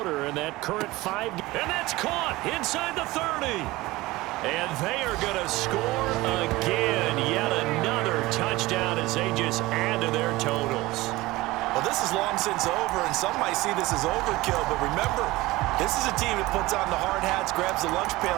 in that current 5. And that's caught inside the 30. And they are going to score again. Yet another touchdown as they just add to their totals. Well, this is long since over, and some might see this as overkill. But remember, this is a team that puts on the hard hats, grabs the lunch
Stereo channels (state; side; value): quieter; left; 19.6 dB